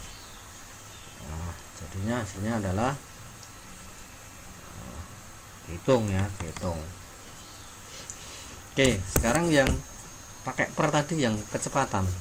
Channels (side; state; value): both; identical; correlation 1.00